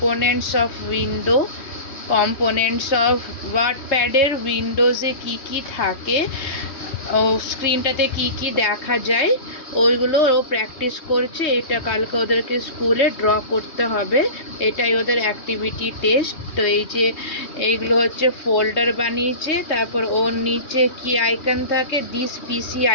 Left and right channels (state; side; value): late; right; 3.2 ms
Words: of window, components of ওয়ার্ডপ্যাডের উইন্ডোজে কি কি থাকে, ও স্ক্রিনটাতে কি কি দেখা যায় ওইগুলো ও প্র্যাকটিস করছে। এটা কালকে ওদেরকে স্কুলে ড্র করতে হবে, এটাই ওদের অ্যাক্টিভিটি টেস্ট। তো এই যে এইগুলো হচ্ছে ফোল্ডার বানিয়েছে, তারপর ওর নিচে কি আইকন থাকে, দিস পিসি